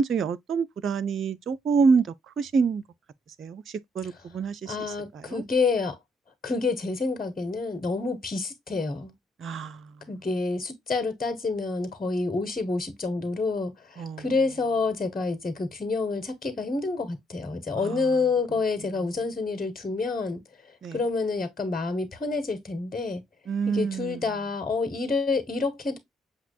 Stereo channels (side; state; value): both; normal; correlation 0.71